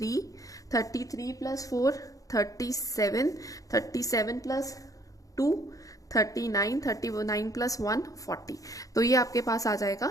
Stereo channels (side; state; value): right; late; 0.17 ms